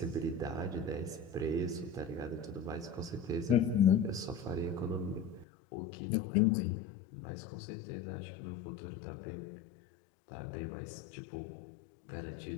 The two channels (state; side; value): drops out; right; at 5.5 s